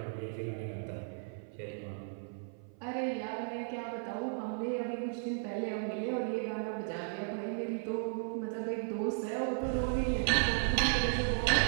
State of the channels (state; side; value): silent; left; 54 dB below the other